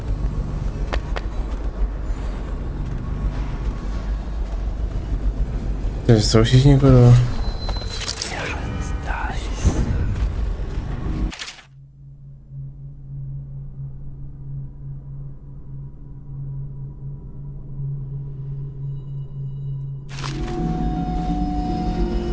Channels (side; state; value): both; identical; correlation 1.00